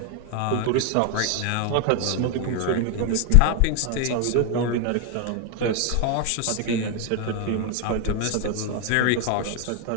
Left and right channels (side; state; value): both; different; correlation 0.01